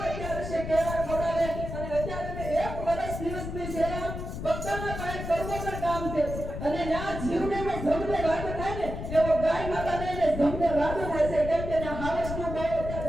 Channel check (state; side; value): noise; left; rumble, 6 dB below the sound